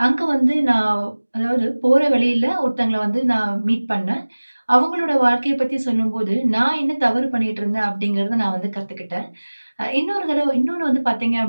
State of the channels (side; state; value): both; inverted; correlation -1.00